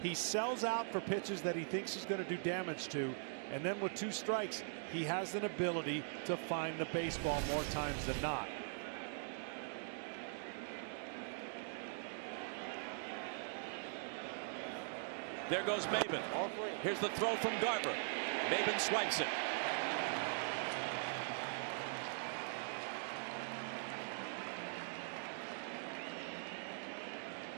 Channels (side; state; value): left; silent; digital silence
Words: He sells out for pitches that he thinks he's going to do damage to, and then with 2 strikes, he has an ability to find the baseball more times than not. There goes Maben. Here's the throw from Garver. Maben swipes it.